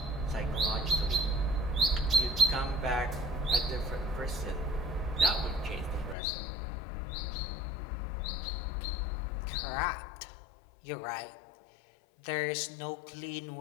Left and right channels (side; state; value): right; drops out; at 6.2 s